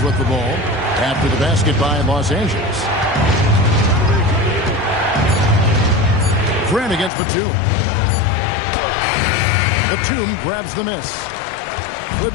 with the ball after the basket by Los Angeles. Grant against Batum. Batum grabs the miss.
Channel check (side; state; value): right; drops out; at 7.1 s